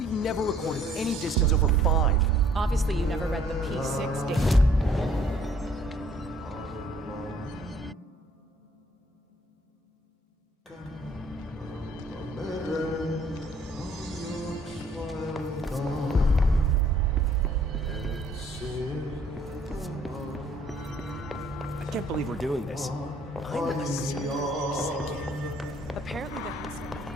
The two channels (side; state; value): both; normal; correlation 0.60